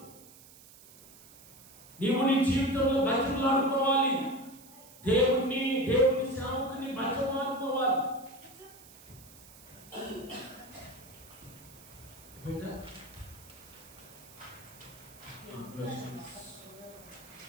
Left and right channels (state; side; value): noise; right; hiss, 21 dB below the sound